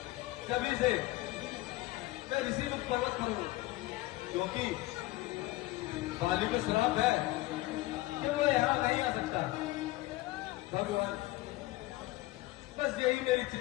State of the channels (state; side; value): quieter; right; 18.8 dB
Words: तभी से मैं ऋषिमुख पर्वत पर हूं, क्योंकि बाली को श्राप है कि वो यहां नहीं आ सकता। भगवान, बस यही मेरी